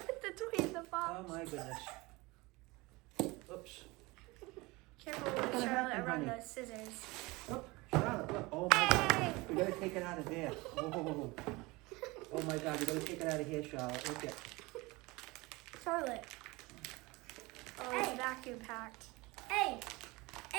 the toy in the box. Oh my goodness. Oops. Careful with Charlotte around the scissors. Oh, Charlotte, look. Oh my God. We gotta take it out of there. Oh, oh my God, we gotta take it out of here, Charlotte. Look at. Charlotte. Oh, it's vacuum packed. Hey!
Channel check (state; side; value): quieter; left; 23.2 dB